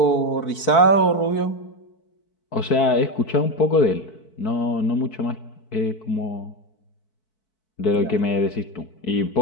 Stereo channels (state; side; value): late; right; 4.6 ms